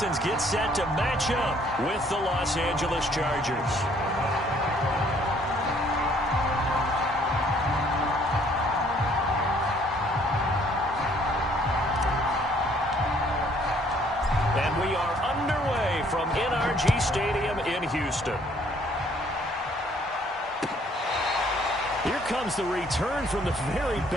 get set to match up with the Los Angeles Chargers. And we are underway from NRG Stadium in Houston. Here comes the return from the very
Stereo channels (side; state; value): both; normal; correlation 0.62